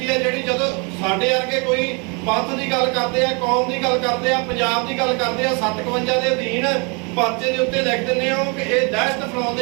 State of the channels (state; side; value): quieter; left; 32.9 dB